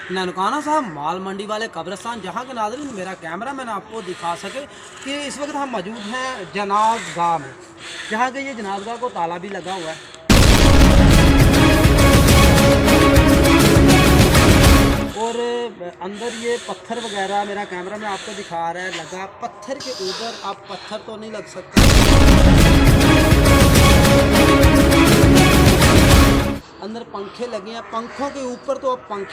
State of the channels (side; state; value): both; identical; correlation 1.00